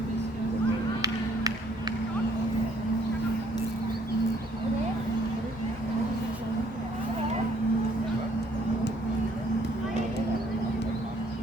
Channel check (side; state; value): both; normal; correlation 0.64